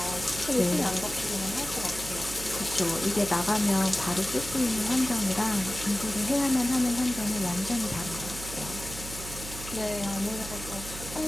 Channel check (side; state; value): right; noise; hum, 11 dB below the sound